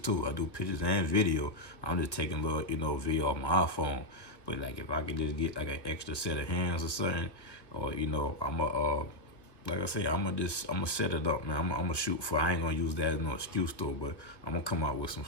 I do pictures and video. I'm just taking little, video off my iPhone. But like if I could just get like an extra set of hands or something, or like I say, I'm gonna set it up, man. I'm gonna shoot for. I ain't gonna use that as no excuse though. But I'm gonna come out with some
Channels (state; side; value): late; right; 1.4 ms